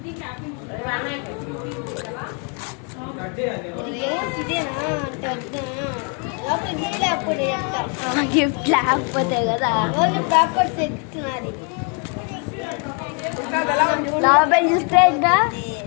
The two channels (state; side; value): quieter; right; 38.3 dB